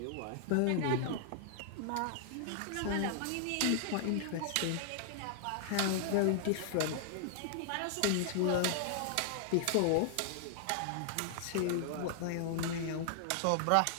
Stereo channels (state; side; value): different; both; correlation -0.01